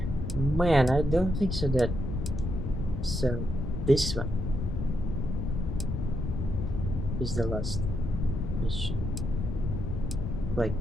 Man, I don't think so that so this one is the last mission. Like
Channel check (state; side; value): noise; left; rumble, 3 dB below the sound